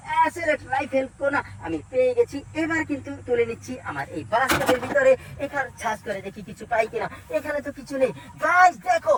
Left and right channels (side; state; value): both; identical; correlation 1.00